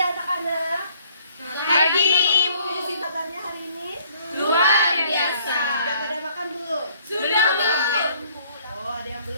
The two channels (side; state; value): both; inverted; correlation -0.61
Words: Selamat pagi, Ibu. Isi kabarnya hari ini? Luar biasa. Sudah pada makan belum? Sudah, Bu. Oh, ada yang